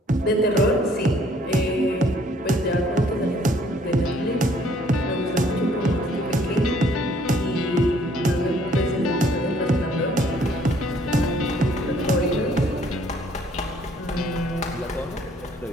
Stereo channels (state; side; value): normal; both; correlation 0.62